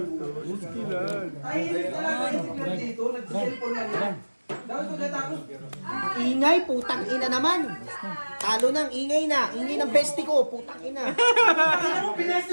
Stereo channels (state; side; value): inverted; both; correlation -1.00